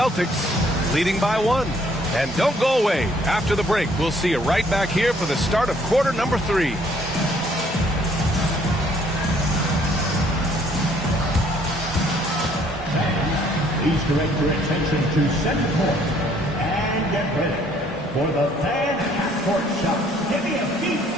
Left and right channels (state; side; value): normal; both; correlation 0.63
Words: leading by 1. And don't go away. After the break, we'll see you right back here for the start of quarter number 3. Please direct your attention to center court and get ready for the fan half-court shot. Give me a beat.